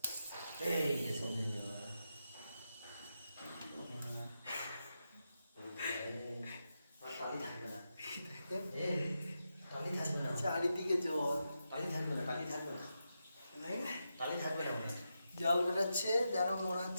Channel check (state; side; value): inverted; both; correlation -0.87